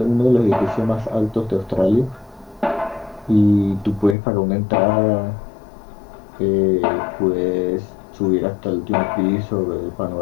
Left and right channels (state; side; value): drops out; right; at 4.2 s